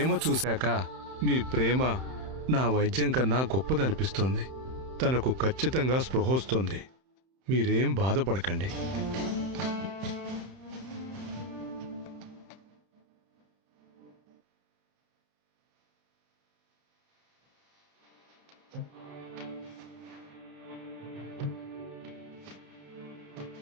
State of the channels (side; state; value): left; late; 31 ms